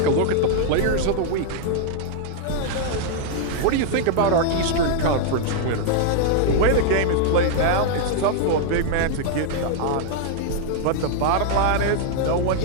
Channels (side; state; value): both; different; correlation -0.01